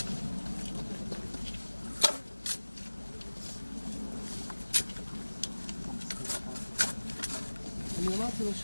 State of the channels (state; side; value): inverted; both; correlation -1.00